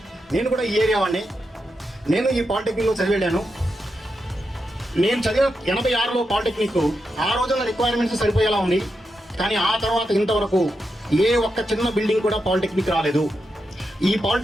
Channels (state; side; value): normal; both; correlation 0.86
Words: నేను కూడా ఈ ఏరియా వాడిని, నేను ఈ పాలిటెక్నిక్లో చదివాను. నేను చదివిన 86లో పాలిటెక్నిక్ ఆ రోజున రిక్వైర్మెంట్స్ సరిపోయేలా ఉంది. కానీ ఆ తర్వాత ఇంతవరకు ఏ ఒక్క చిన్న బిల్డింగ్ కూడా పాలిటెక్నిక్ రాలేదు. ఈ